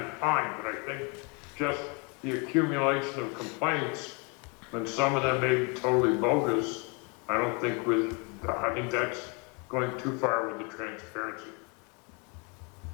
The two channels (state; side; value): quieter; right; 33.0 dB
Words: fine. But I think just the accumulation of complaints, and some of them may be totally bogus, I don't think I think that's going too far with the transparency.